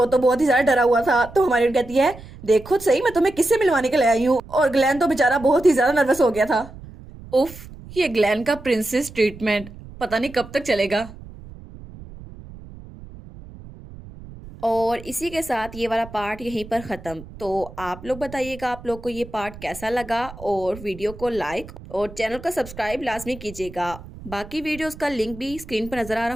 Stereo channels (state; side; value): noise; right; rumble, 16 dB below the sound